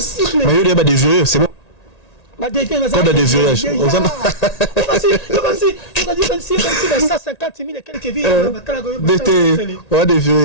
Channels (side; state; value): right; late; 1.9 ms